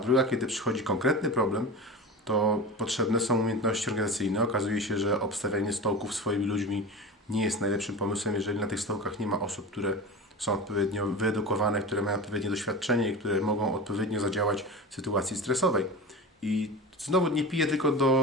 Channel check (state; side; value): normal; both; correlation 0.29